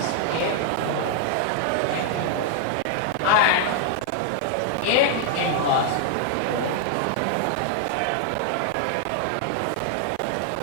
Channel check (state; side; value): different; both; correlation 0.00